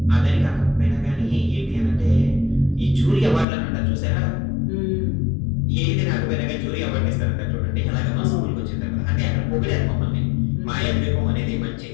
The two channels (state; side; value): drops out; right; at 3.5 s